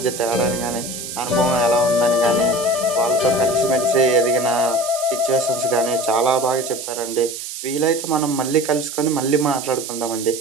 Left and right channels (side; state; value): right; noise; hiss, 8 dB below the sound